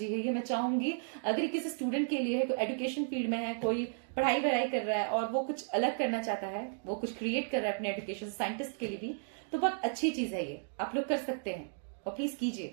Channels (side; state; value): left; silent; digital silence